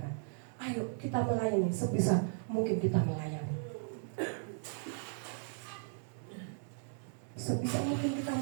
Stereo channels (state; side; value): silent; left; 54 dB below the other